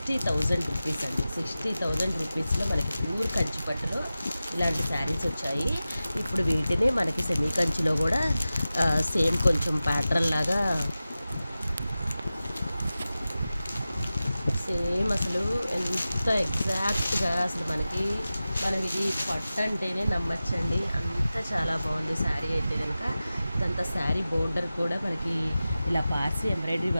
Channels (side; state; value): both; inverted; correlation -0.95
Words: రూపీస్ అండి. 60,000 రూపీస్లో మనకి ప్యూర్ కంచి పట్టులో ఇలాంటి శారీస్ వచ్చాయి. ఇప్పుడు వీటిని మనకి సెమీ కంచిలో కూడా సేమ్ కొంచెం ప్యాటర్న్ లాగా సేమ్ అసలు ఎంత ఎగ్జాక్ట్గా అసలు మనం ఇది పట్టు అంటేనే నమ్మచ్చండి. అంత చాలా బాగుంది శారీ అయితే కనుక. ఇదంతా శారీ బోర్డర్ కూడా మనకి ఇలా పార్సీ ఎంబ్రాయిడరీ